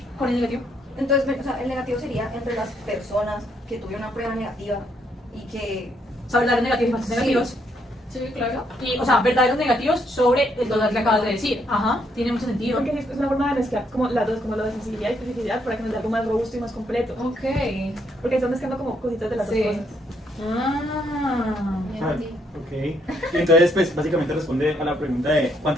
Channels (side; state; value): both; normal; correlation 0.73